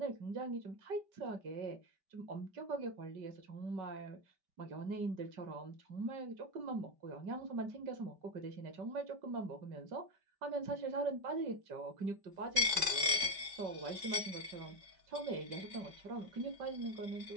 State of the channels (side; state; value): left; late; 5.2 ms